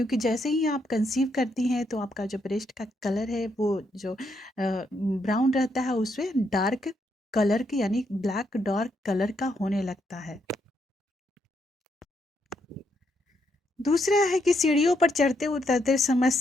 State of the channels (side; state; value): both; normal; correlation 0.77